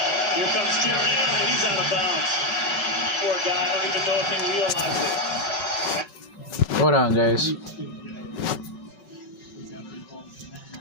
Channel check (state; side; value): late; right; 5.4 ms